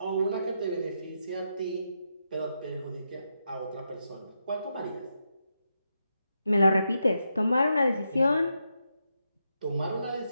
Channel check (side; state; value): both; inverted; correlation -0.84